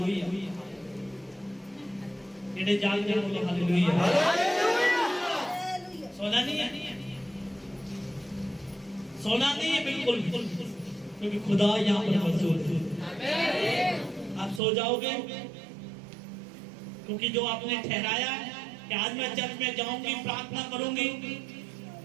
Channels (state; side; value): drops out; left; at 14.6 s